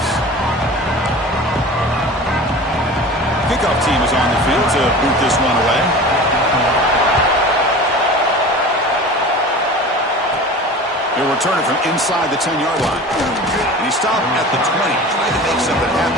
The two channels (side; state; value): both; normal; correlation 0.37